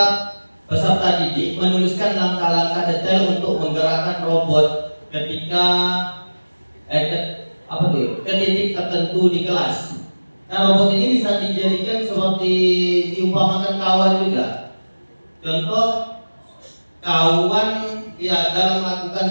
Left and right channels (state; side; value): inverted; both; correlation -1.00